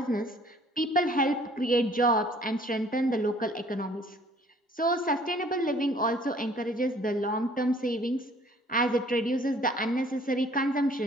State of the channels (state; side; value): normal; both; correlation 0.56